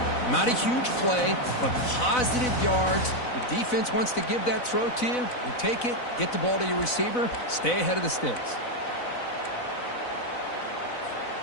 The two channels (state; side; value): late; right; 4.0 ms